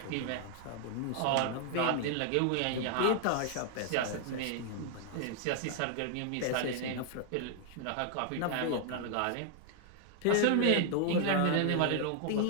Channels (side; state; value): both; different; correlation 0.00